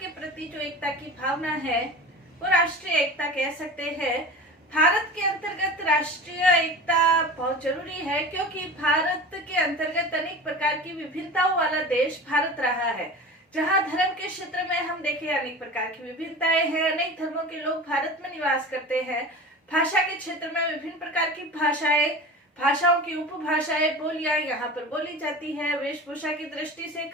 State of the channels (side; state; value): both; normal; correlation 0.33